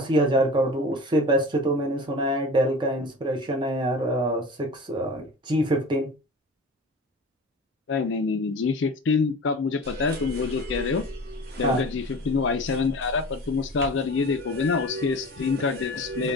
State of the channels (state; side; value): normal; both; correlation 0.36